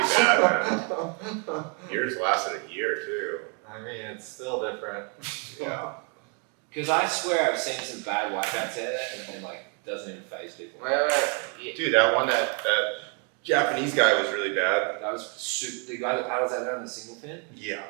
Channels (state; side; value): quieter; left; 36.7 dB